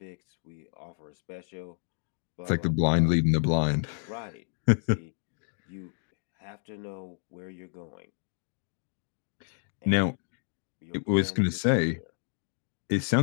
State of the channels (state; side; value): silent; right; digital silence